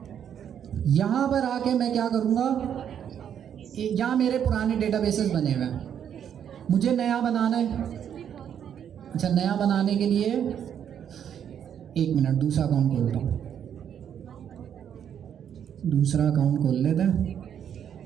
यहाँ पर आके मैं क्या करूँगा, यहाँ मेरे पुराने डेटाबेसेस बने हुए हैं, मुझे नया बनाना है। अच्छा, नया बनाने के लिए एक मिनट, दूसरा अकाउंट खोलता हूँ, दूसरा अकाउंट खोल लेते हैं।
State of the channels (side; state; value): left; quieter; 8.9 dB